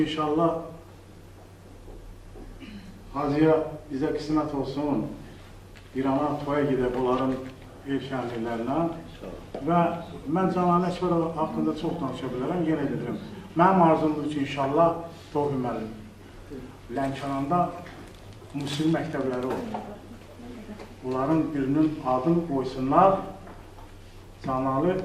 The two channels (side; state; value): both; identical; correlation 1.00